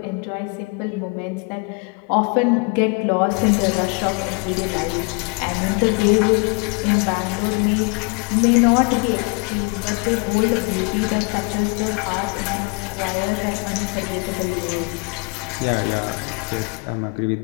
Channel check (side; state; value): right; quieter; 33.1 dB